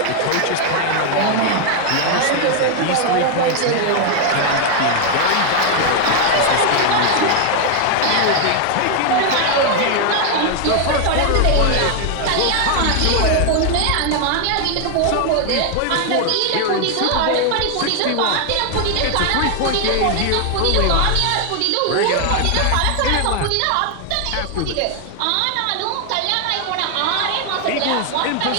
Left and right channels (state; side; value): different; both; correlation 0.00